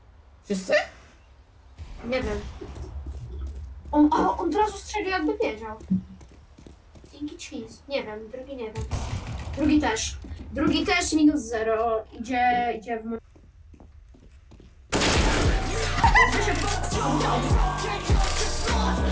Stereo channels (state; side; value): identical; both; correlation 1.00